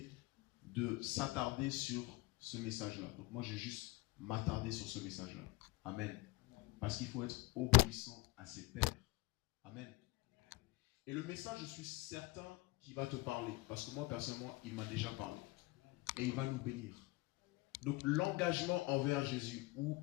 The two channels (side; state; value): right; quieter; 21.5 dB